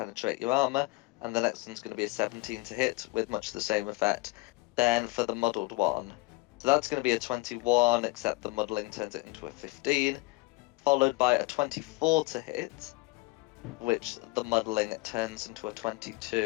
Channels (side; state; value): right; quieter; 22.8 dB